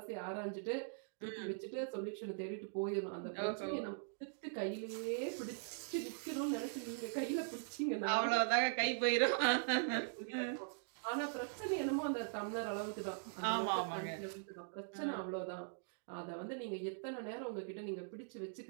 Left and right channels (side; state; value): left; silent; digital silence